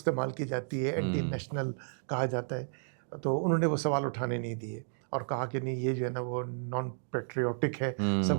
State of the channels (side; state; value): left; silent; digital silence